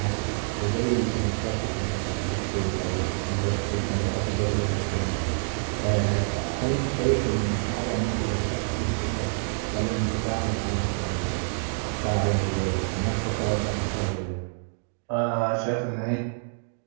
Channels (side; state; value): left; silent; 59 dB below the other